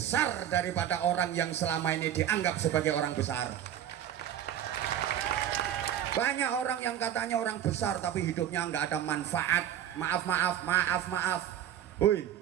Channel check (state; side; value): quieter; left; 10.7 dB